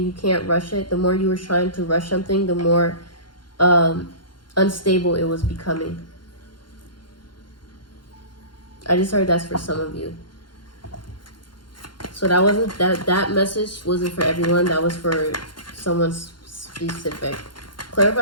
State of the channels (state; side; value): late; right; 0.72 ms